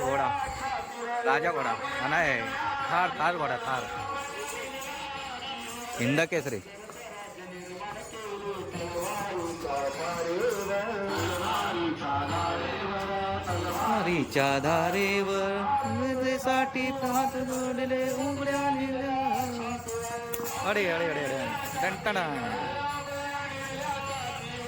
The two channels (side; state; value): both; identical; correlation 1.00